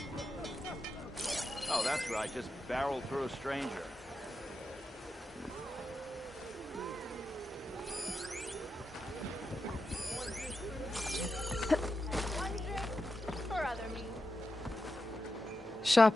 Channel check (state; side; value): normal; both; correlation 0.89